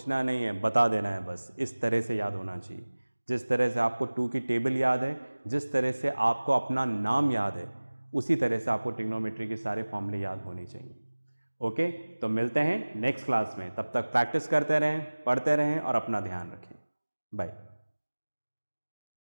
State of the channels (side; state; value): both; inverted; correlation -1.00